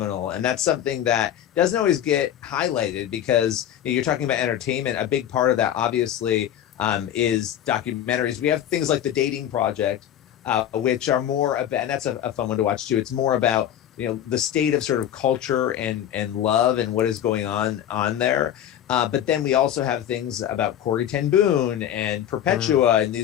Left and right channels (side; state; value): right; quieter; 10.7 dB